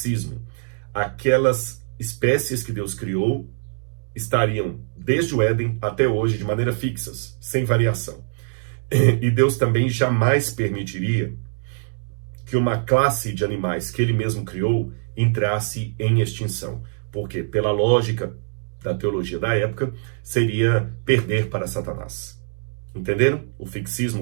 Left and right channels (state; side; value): silent; left; digital silence